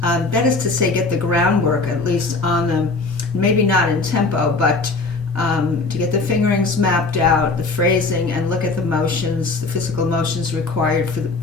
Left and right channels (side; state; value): right; quieter; 3.7 dB